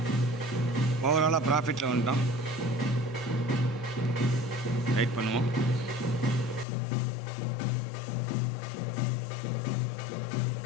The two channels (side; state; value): right; drops out; at 6.7 s